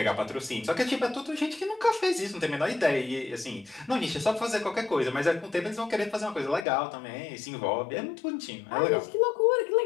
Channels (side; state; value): right; drops out; at 6.7 s